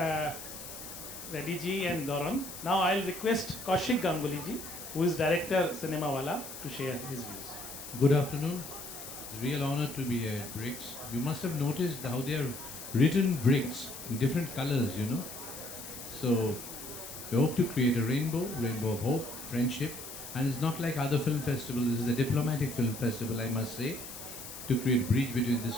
Reddy ji and Doron. Now I'll request Kaushik Ganguly ji, who is director Ciemawala, to share his views. Good afternoon. It's a real honor to be here at Bricks. You must have noticed how they are written bricks in different colors, you know. So we hope to create a rainbow of hope, friendship, and it's not like other film festivals. This is a diplomatic film festival, I must say, to create a bridge between these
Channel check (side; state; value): left; noise; hiss, 11 dB below the sound